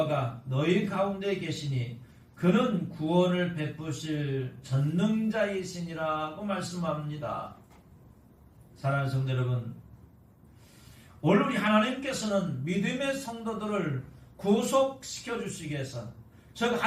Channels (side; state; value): both; identical; correlation 1.00